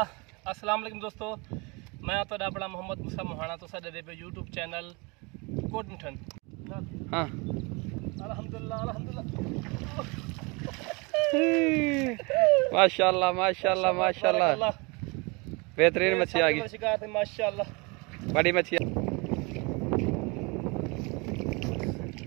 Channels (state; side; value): quieter; left; 28.4 dB